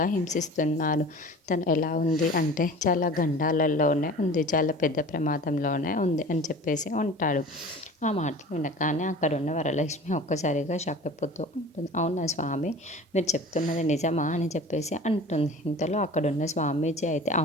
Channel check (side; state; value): both; normal; correlation 0.41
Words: హింసిస్తున్నారు. తను ఎలా ఉంది అంటే చాలా గండాలలోనే ఉంది, చాలా పెద్ద ప్రమాదంలోనే ఉంది అని చెప్పేసి ఉంటాడు. ఆ మాటలు వినగానే అక్కడున్న వరలక్ష్మి ఒక్కసారిగా షాక్ అయిపోతూ ఉంటుంది. అవునా స్వామి, మీరు చెప్తున్నది నిజమా అని చెప్పేసి అంటుంది. ఇంతలో అక్కడున్న స్వామీజీ అయితే,